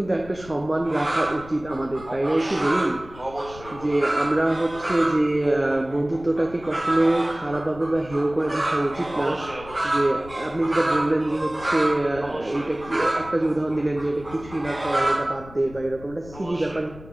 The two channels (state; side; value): noise; left; rumble, 18 dB below the sound